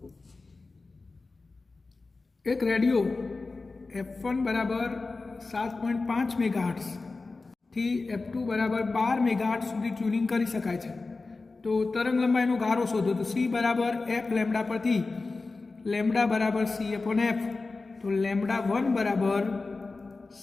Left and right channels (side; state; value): right; quieter; 3.7 dB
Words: એક રેડિયો F1 બરાબર 7.5 મેગાહર્ટ્ઝ થી F2 બરાબર 12 મેગાહર્ટ્ઝ સુધી ટ્યુનિંગ કરી શકાય છે। તો તરંગલંબાઈનો ગારો શોધો। તો C બરાબર F લેમ્બડા પરથી લેમ્બડા બરાબર C/F, તો લેમ્બડા 1 બરાબર